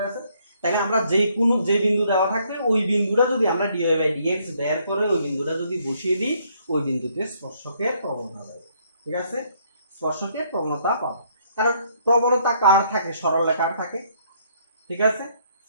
গেছে? তাহলে আমরা যে বিন্দু দেওয়া থাকবে ওই বিন্দুটা যদি আমরা dy বাই dx বের করে ওই বিন্দুটা যদি বসিয়ে দিই ওই বিন্দুতে স্পর্শকের প্রবণতা পাবো, ঠিক আছে? স্পর্শকের প্রবণতা পাবো, কারণ প্রবণতা কার থাকে? সরলরেখার থাকে, ঠিক আছে?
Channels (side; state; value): both; inverted; correlation -0.68